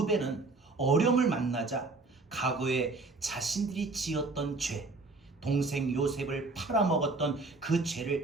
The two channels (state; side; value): quieter; left; 3.5 dB